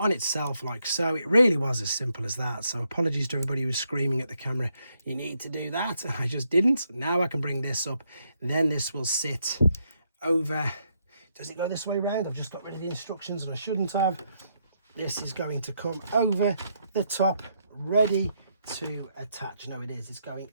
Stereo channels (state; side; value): inverted; both; correlation -0.77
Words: itself like so. It really was as simple as that. So apologies to everybody who was screaming at the camera, you need to do that. I just didn't. Now I can bring this up. Then this will sit over. Does it go this way round? I've just got rid of the instructions and I shouldn't have. This is going to come over the top, ready to attach. No, it is. It's going